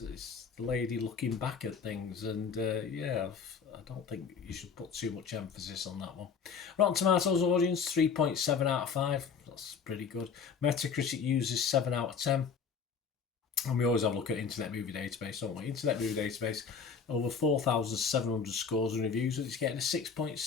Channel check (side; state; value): right; quieter; 6.1 dB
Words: the lady looking back at things, and I don't think you should put too much emphasis on that one. Rotten Tomatoes audience, 3.7 out of 5. That's pretty good. Metacritic uses 7 out of 10. And we always have a look at Internet Movie Database, don't we? Internet Movie Database, over 4,700 scores and reviews, and it's getting a